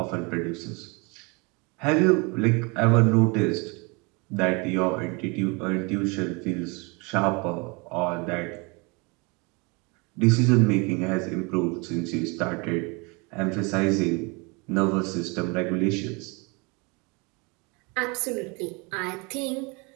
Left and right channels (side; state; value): left; quieter; 29.4 dB